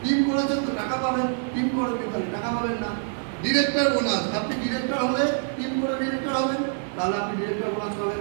টিম করেছেন তো টাকা পাবেন, টিম করেন তাহলে টাকা পাবেন না। ডিরেক্টর বোনাস, আপনি ডিরেক্টর হলে টিম করে ডিরেক্টর হবেন, তাহলে আপনি ডিরেক্টর বোনাস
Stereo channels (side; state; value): left; silent; 61 dB below the other